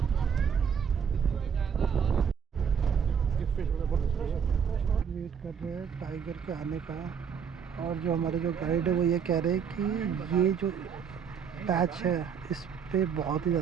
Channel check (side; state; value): left; quieter; 7.1 dB